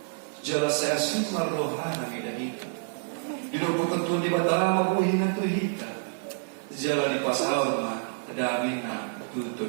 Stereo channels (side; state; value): left; silent; digital silence